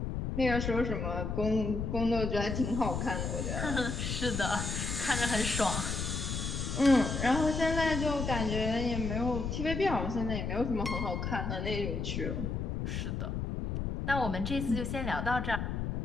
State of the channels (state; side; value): noise; left; rumble, 2 dB below the sound